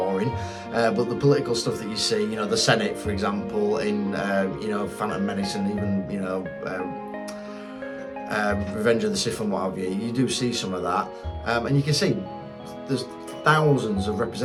but the political stuff that you see, you know, the Senate, for example, in you know, Phantom Menace, and even, you know, Revenge of the Sith and what have you, you do see some of that, and you can see there's thousands of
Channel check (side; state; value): both; identical; correlation 1.00